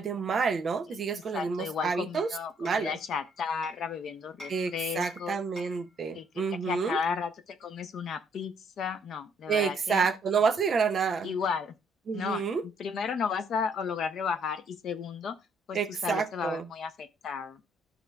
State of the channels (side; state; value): both; normal; correlation 0.67